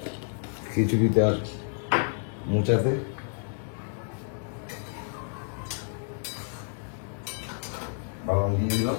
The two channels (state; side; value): silent; right; 58 dB below the other